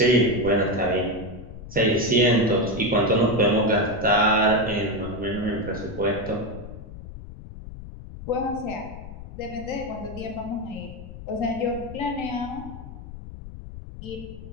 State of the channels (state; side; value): noise; left; rumble, 13 dB below the sound